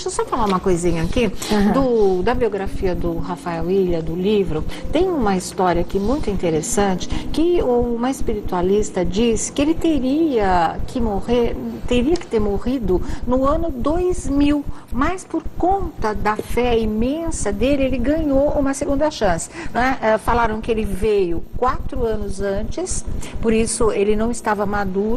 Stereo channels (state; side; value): identical; both; correlation 1.00